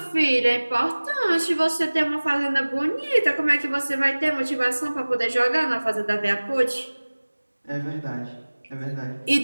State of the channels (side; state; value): both; inverted; correlation -1.00